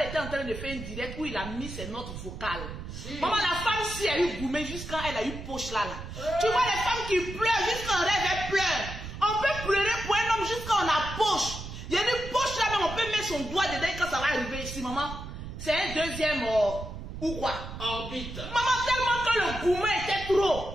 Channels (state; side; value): noise; right; rumble, 9 dB below the sound